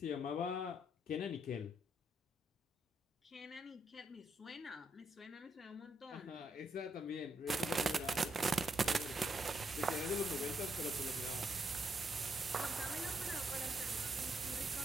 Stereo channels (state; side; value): normal; both; correlation 0.78